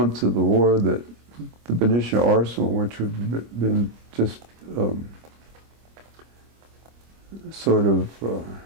of the war, that the Benicia Arsenal, which had been just sort of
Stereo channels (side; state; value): left; late; 25 ms